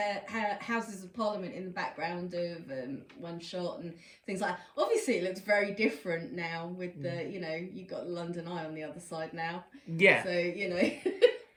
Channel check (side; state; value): both; identical; correlation 1.00